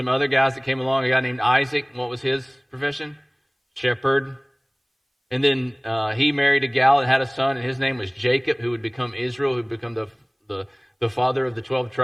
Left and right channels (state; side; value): identical; both; correlation 1.00